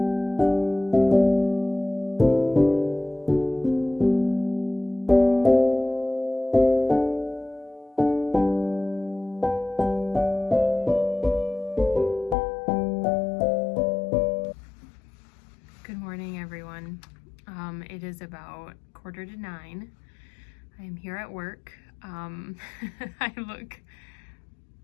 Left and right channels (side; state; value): right; drops out; at 12.4 s